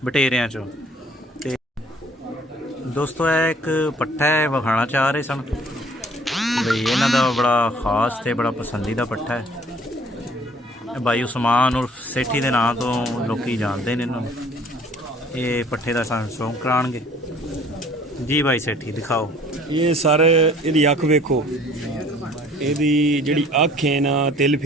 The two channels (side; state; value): both; normal; correlation 0.54